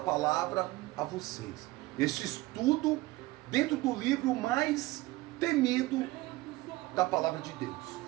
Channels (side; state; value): left; quieter; 19.4 dB